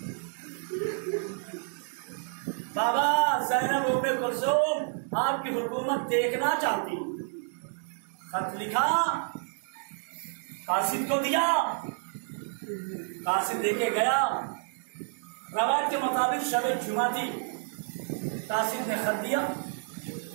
बाबा ज़ैनब उम्मे कुलसूम आपकी हुकूमत देखना चाहती। खत लिखा, कासिद को दिया, कासिद लेके गया। रवायत के मुताबिक शब जुमा थी, कासिद ने खत दिया,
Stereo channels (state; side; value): silent; left; digital silence